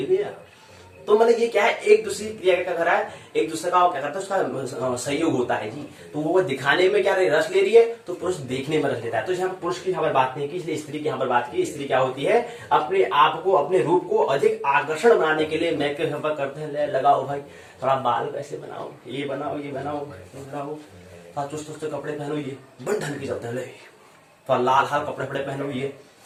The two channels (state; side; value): identical; both; correlation 1.00